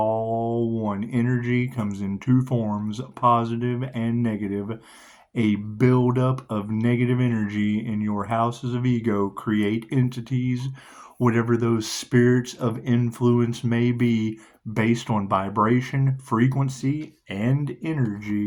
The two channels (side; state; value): both; identical; correlation 1.00